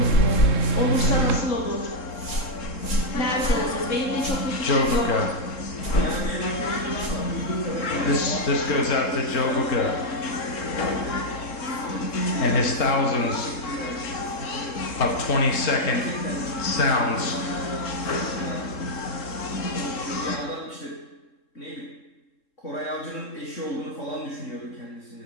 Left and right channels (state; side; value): late; right; 3.7 ms